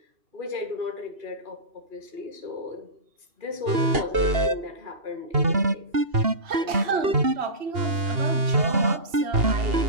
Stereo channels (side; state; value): left; late; 2.8 ms